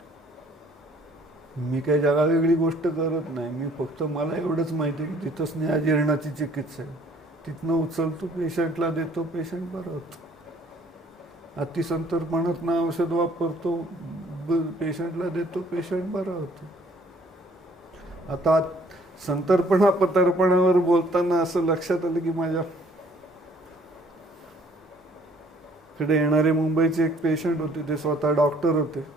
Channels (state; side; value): normal; both; correlation 0.59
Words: मी काही जगा वेगळी गोष्ट करत नाही. मी फक्त मला एवढंच माहिती आहे की तिथं स्नेहाजीर्णाची चिकित्सा आहे. तिथनं उचलतो, पेशंटला देतो, पेशंट बरं होतो. अतिसंतर्पणातनं औषध वापरतो, पेशंटला देतो, पेशंट बरा होतो. आता संतर्पणा पतर्पणावर बोलताना असं लक्षात आलं की माझ्याकडे येणारे मुंबईचे एक पेशंट होते. ते स्वतः डॉक्टर होते.